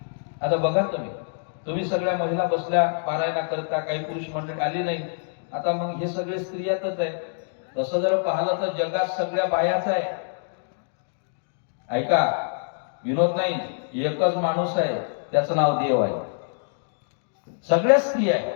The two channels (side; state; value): right; silent; digital silence